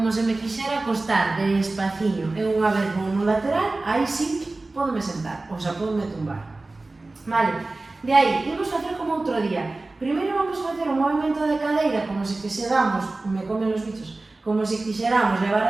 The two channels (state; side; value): quieter; left; 3.2 dB